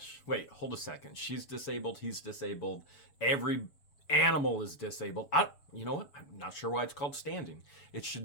Wait, hold a second. She's disabled. He's disabled. Every animal is disabled. You know what? I'm not sure why it's called standing. It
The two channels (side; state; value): right; late; 7.0 ms